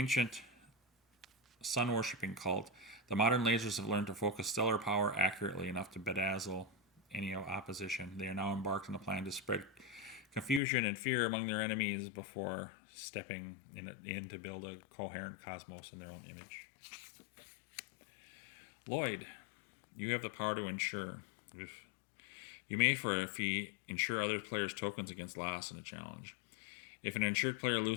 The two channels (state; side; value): drops out; right; at 10.6 s